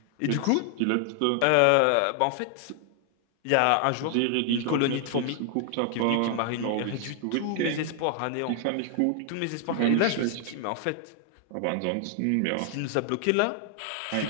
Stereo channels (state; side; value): different; both; correlation 0.00